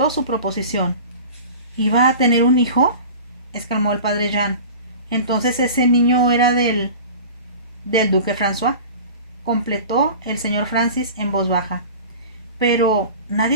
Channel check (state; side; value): inverted; both; correlation -0.37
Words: su proposición. ¿Iba a tener un hijo?, exclamó el padre Jean. Entonces ese niño era del duque François, completó el señor Francis en voz baja. Pero